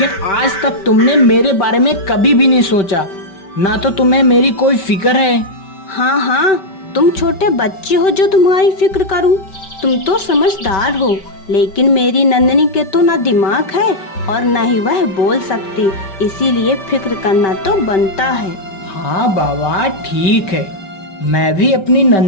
आज तक तुमने मेरे बारे में कभी भी नहीं सोचा। ना तो तुम्हें मेरी कोई फिक्र है। हाँ हाँ, तुम छोटे बच्चे हो जो तुम्हारी फिक्र करूं। तुम तो समझदार हो, लेकिन मेरी नंदिनी के तो ना दिमाग है और ना ही वह बोल सकती, इसीलिए फिक्र करना तो बनता है। हाँ बाबा ठीक है, मैं भी अपनी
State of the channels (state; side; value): late; right; 5.2 ms